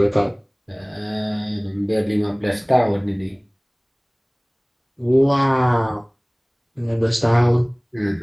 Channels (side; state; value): both; identical; correlation 1.00